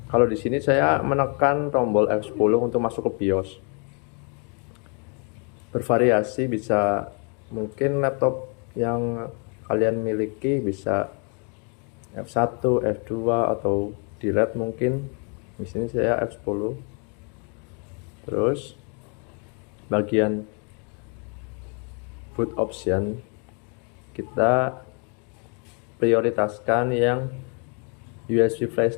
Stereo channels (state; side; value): quieter; right; 36.9 dB